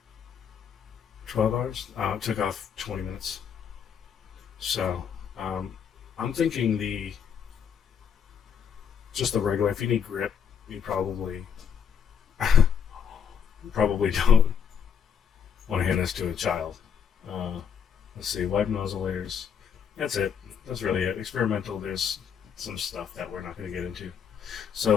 12 hours? It took off 20 minutes. So I'm thinking just the regular, if you need grip, you probably don't want to hand this to a child. Let's see, wipe nozzle layers. That's it. That's really it. Experimental, there's some stuff that we're not going to get into.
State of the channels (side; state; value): right; quieter; 7.5 dB